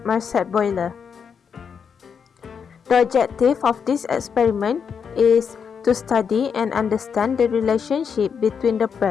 Marcet boiler. The objective of this experiment is to study and understand the relationship between the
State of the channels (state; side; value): quieter; right; 6.6 dB